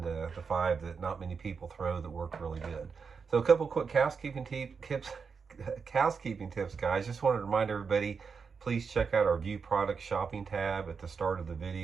the 5 that not many people throw that work really good. So a couple quick housekeeping tips, guys. Just wanted to remind everybody, please check out our View Products shopping tab at the start of the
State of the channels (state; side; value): quieter; left; 5.6 dB